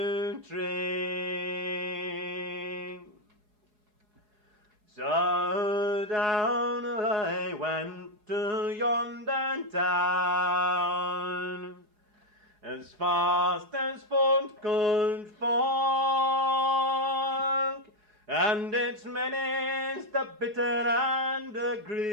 tree. So down I went to yonder town, as fast as foot could walk, and its many's the bitter and the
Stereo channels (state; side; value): late; left; 4.7 ms